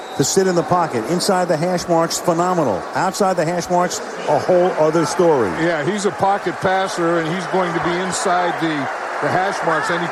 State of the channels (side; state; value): both; identical; correlation 1.00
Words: to sit in the pocket. Inside the hash marks, phenomenal. Outside the hash marks, a whole other story. Yeah, he's a pocket passer, and he's going to be inside the hash marks